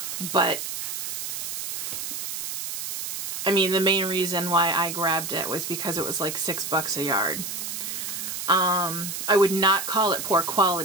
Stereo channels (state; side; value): noise; right; hiss, 5 dB below the sound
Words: but I mean, the main reason why I grabbed it was because it was like $6 a yard. I would not call it poor